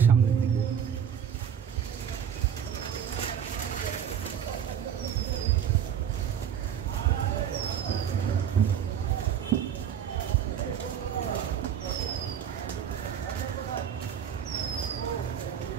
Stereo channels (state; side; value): quieter; left; 8.6 dB